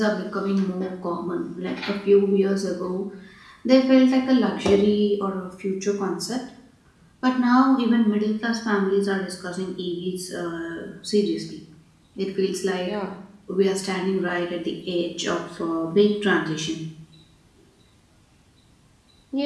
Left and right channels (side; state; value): both; identical; correlation 1.00